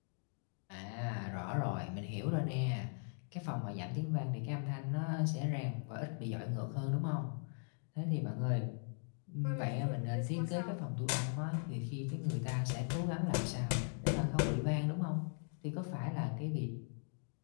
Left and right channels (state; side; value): silent; right; 52 dB below the other